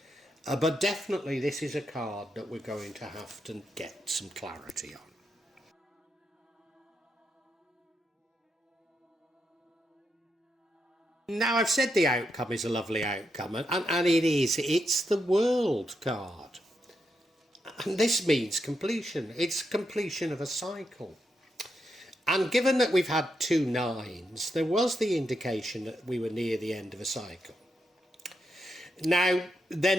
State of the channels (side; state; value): both; normal; correlation 0.83